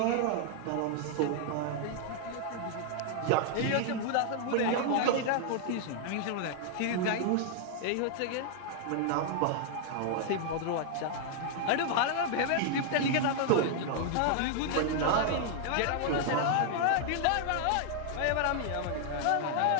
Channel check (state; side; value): different; both; correlation 0.00